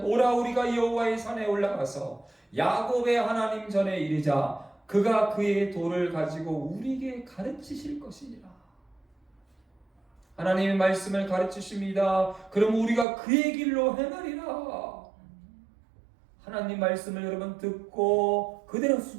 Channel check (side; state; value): left; drops out; at 13.1 s